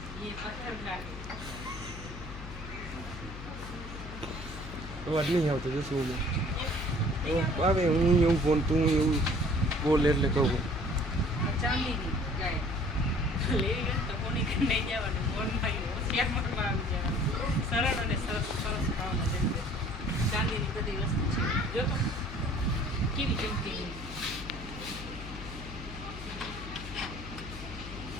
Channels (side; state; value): left; noise; hum, 11 dB below the sound